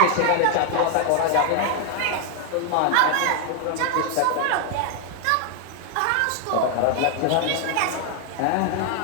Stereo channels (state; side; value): different; both; correlation 0.00